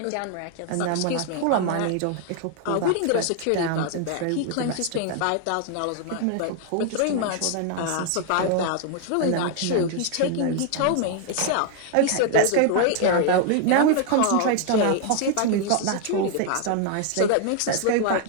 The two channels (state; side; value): different; both; correlation 0.00